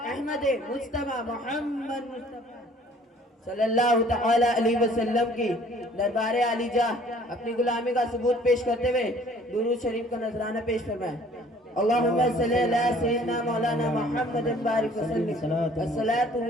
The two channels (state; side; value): normal; both; correlation 0.55